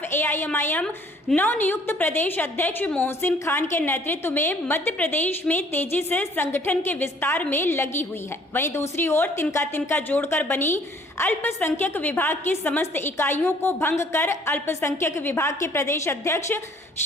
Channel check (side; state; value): both; normal; correlation 0.58